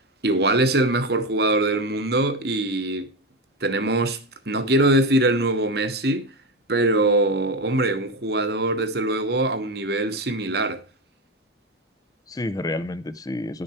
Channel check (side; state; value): both; normal; correlation 0.17